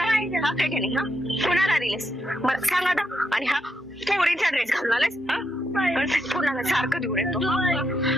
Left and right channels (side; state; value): both; normal; correlation 0.81